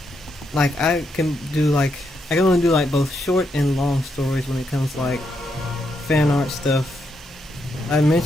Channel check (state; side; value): normal; both; correlation 0.80